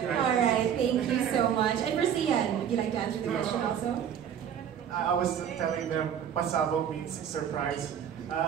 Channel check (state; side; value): quieter; left; 8.9 dB